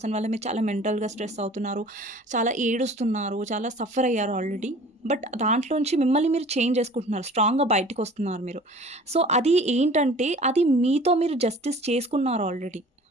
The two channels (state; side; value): normal; both; correlation 0.46